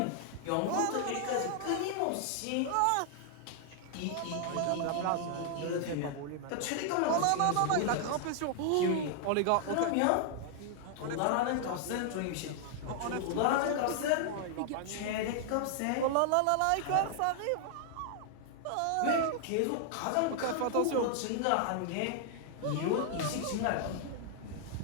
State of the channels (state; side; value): different; both; correlation 0.00